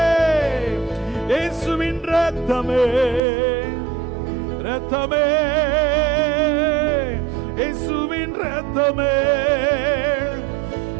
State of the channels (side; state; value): left; drops out; at 3.2 s